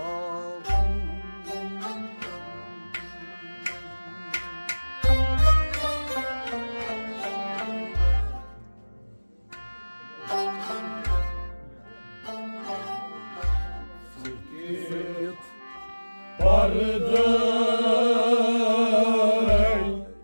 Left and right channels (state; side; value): inverted; both; correlation -1.00